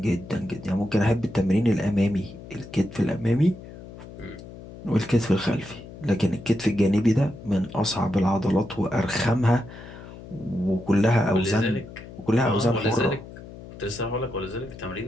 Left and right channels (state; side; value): noise; left; hum, 15 dB below the sound